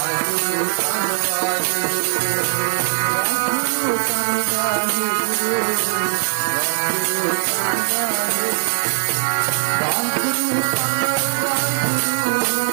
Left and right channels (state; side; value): silent; left; 66 dB below the other